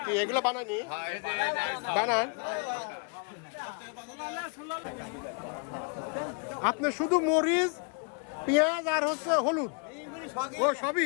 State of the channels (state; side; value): quieter; right; 38.7 dB